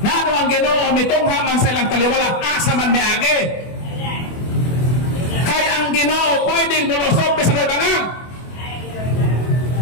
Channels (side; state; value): right; late; 24 ms